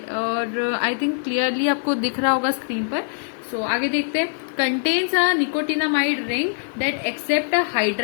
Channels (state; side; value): silent; right; 64 dB below the other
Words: और आई थिंक क्लियरली आपको दिख रहा होगा स्क्रीन पर। सो आगे देखते हैं। Contains a nicotinamide ring that accept a